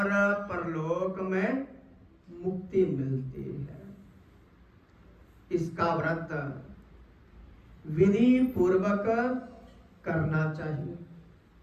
परलोक में मुक्ति मिलती है। इसका व्रत विधि पूर्वक करना चाहिए।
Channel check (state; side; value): identical; both; correlation 1.00